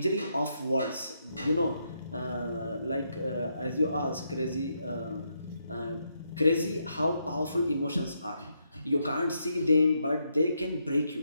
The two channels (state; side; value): inverted; both; correlation -0.79